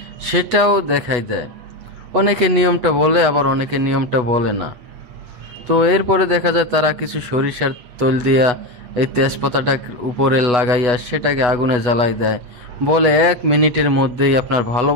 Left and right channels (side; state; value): left; late; 8.2 ms